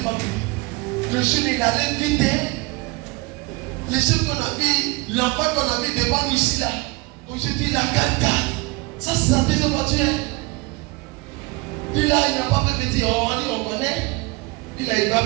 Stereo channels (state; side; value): quieter; left; 24.0 dB